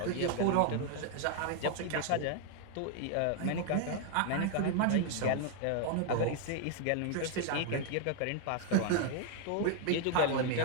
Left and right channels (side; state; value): both; different; correlation 0.00